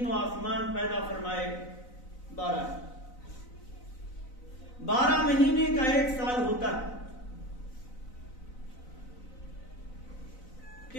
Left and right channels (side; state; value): right; late; 4.0 ms